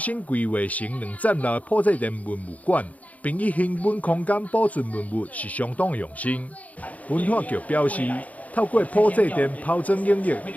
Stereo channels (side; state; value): right; late; 0.072 ms